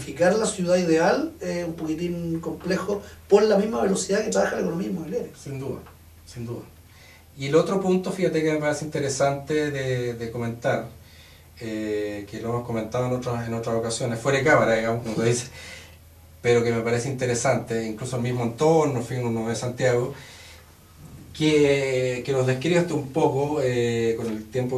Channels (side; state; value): both; identical; correlation 1.00